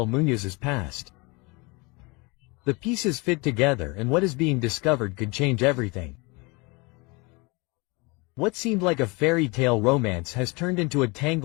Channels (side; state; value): right; quieter; 27.1 dB